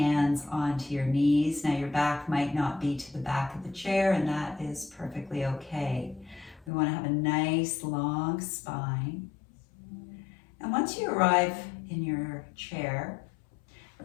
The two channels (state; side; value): drops out; right; at 6.7 s